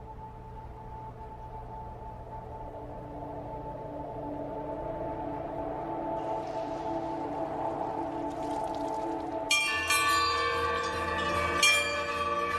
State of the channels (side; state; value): both; identical; correlation 1.00